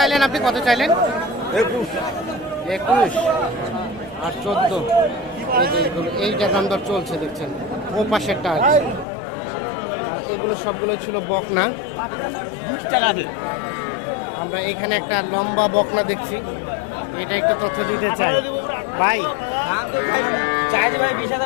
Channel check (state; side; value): drops out; right; at 9.1 s